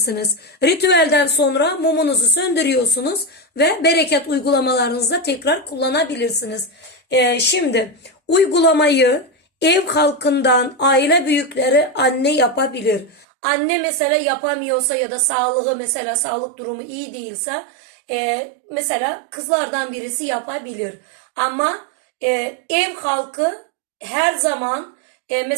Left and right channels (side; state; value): left; drops out; at 13.2 s